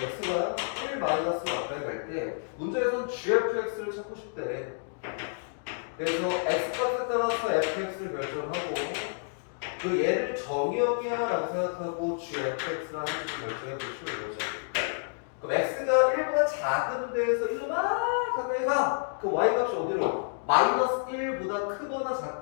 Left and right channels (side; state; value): right; silent; digital silence